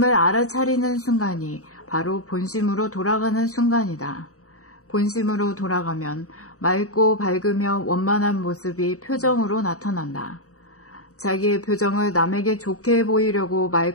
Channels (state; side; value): late; right; 0.65 ms